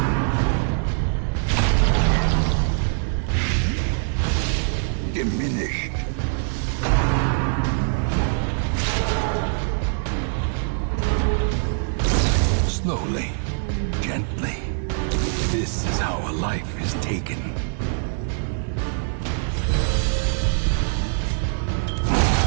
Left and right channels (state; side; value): silent; left; digital silence